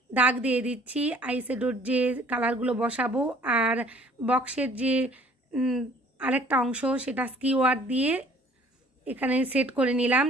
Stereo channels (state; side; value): normal; both; correlation 0.55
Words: দাগ দিয়ে দিচ্ছি আইশ্যাডোর যে কালারগুলো বসাবো, আর বক্সের যে আরেকটা অংশ সেটা স্কিওয়ার দিয়ে এখানে সেট করে নিলাম